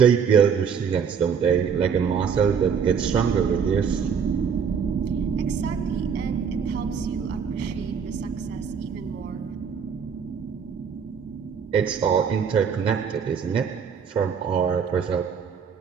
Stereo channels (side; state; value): left; quieter; 6.8 dB